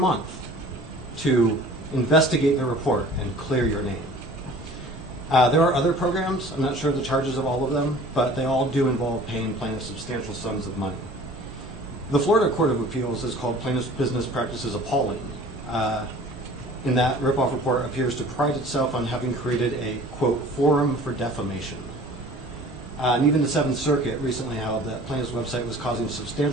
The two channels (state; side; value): normal; both; correlation 0.46